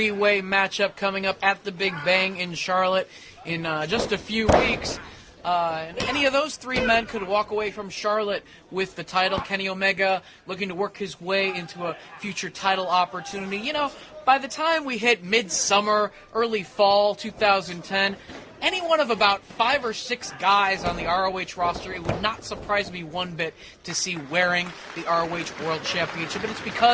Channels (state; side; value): identical; both; correlation 1.00